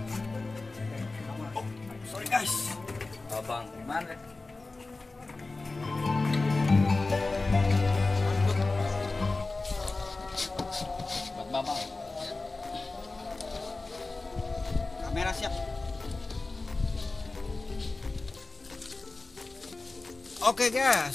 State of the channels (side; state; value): right; quieter; 3.4 dB